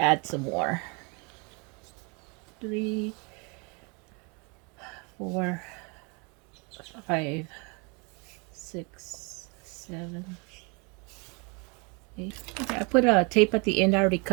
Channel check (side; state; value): left; quieter; 31.8 dB